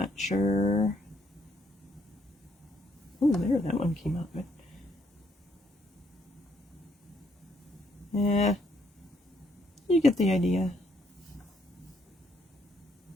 sure. Oh, there, that one came out good. Yeah, you get the idea.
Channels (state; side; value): normal; both; correlation 0.71